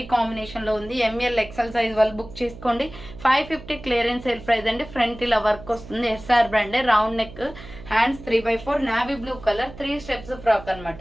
కాంబినేషన్లో ఉంది. ఎంఎల్ ఎక్సెల్ సైజ్ వాళ్ళు బుక్ చేసుకోండి. 550 క్లియరెన్స్ సేల్ ప్రైస్ అండి. ఫ్రంట్ ఇలా వర్క్ వస్తుంది, ఎస్ఆర్ బ్రాండే, round neck, hands 3/4, navy blue colour, 3 steps frock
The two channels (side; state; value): right; noise; hum, 16 dB below the sound